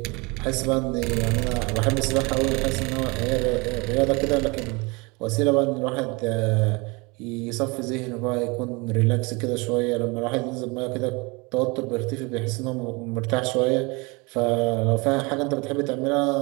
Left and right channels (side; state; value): left; quieter; 27.1 dB